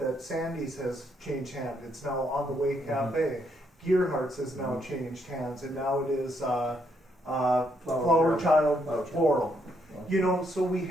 Sandy's has changed hands. It's now On the Way Cafe. Gearhart's has now changed hands, and now it is Flower Child Floral. So we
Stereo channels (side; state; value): both; normal; correlation 0.74